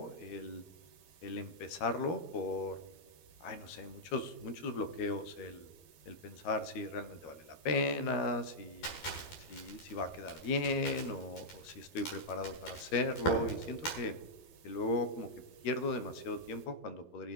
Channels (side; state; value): right; late; 12 ms